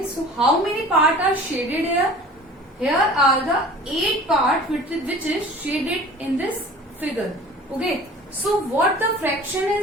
so how many parts are shaded here? Here are the 8 parts which is shaded in this figure. Okay, so what the fraction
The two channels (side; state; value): both; normal; correlation 0.44